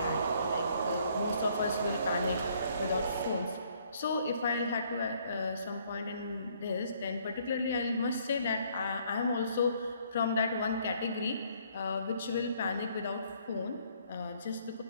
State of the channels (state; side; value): inverted; both; correlation -0.64